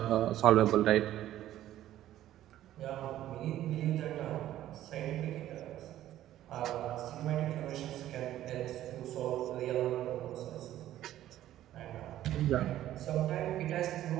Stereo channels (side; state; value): left; quieter; 13.1 dB